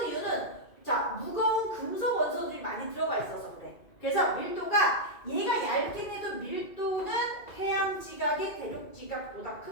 이유는 자, 무거운 금속 원소들이 많이 들어가 있어서 그래. 그래서 밀도가 얘가 얇긴 해도 밀도는 해양 지각이 대륙 지각보다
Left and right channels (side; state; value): right; late; 2.3 ms